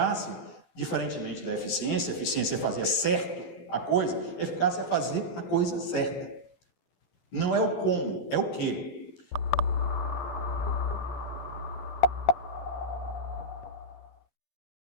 diferentemente da eficiência, a eficiência é fazer certo a coisa, a eficácia é fazer a coisa certa. Não é o como, é o que.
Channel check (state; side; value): late; right; 11 ms